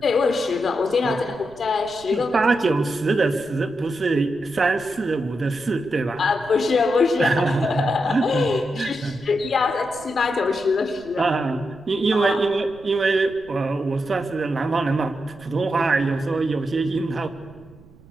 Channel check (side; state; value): right; noise; rumble, 24 dB below the sound